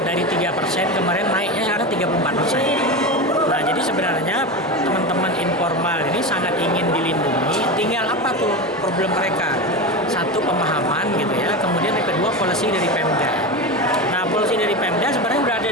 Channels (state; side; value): normal; both; correlation 0.21